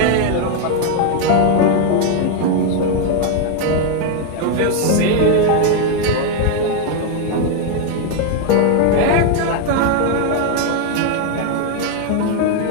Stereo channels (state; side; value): different; both; correlation 0.01